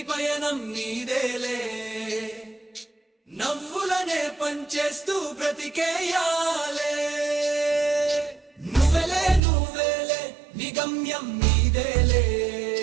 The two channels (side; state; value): left; drops out; at 9.4 s